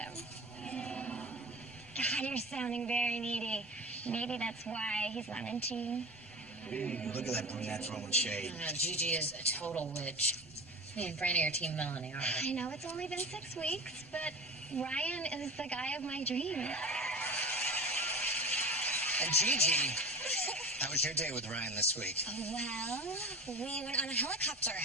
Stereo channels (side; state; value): both; normal; correlation 0.33